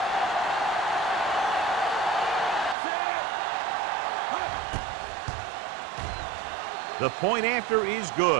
The point after is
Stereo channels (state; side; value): drops out; left; at 2.8 s